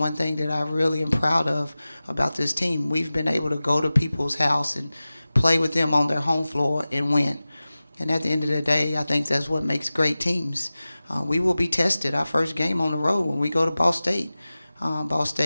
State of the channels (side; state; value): both; inverted; correlation -0.97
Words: thing that I really am proud of about this team. We've been able to go to people's house and play with them on their home floor and win. And at the end of the day, I think that's what makes great teams. We will be tested our first game on the road when we go to Ball State. Ball